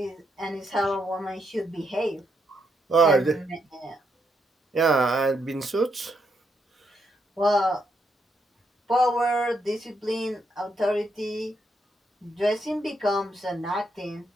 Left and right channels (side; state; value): both; normal; correlation 0.78